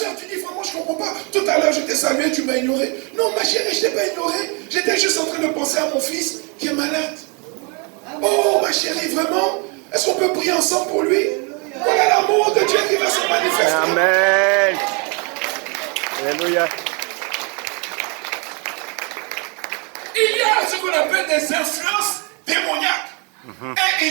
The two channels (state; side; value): quieter; left; 33.1 dB